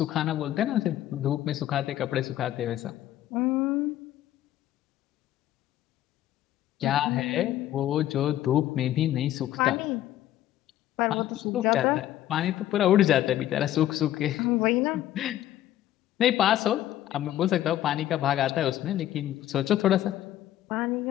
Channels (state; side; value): quieter; right; 13.0 dB